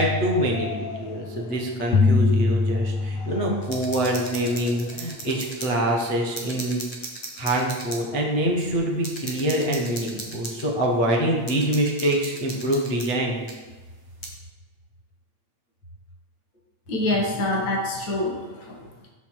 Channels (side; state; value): right; late; 8.7 ms